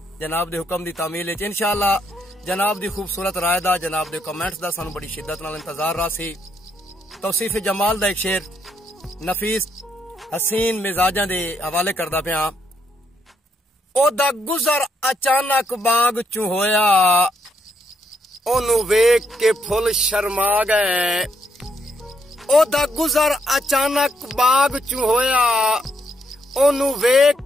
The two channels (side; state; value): both; normal; correlation 0.75